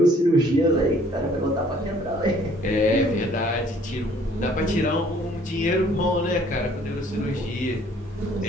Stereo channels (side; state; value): both; normal; correlation 0.59